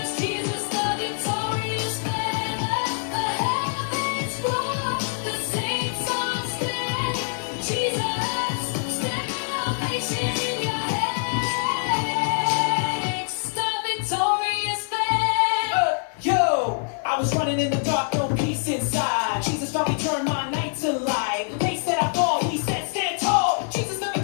Jesus, the victorious banner, the heavens roar, the saints all stand. Jesus, salvation in your hands, the victorious banner. Yo, I was running in the dark, no peace inside. Jesus found me, turned my night to light. They said I fall, he said stand tall. Jesus the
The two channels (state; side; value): silent; right; 62 dB below the other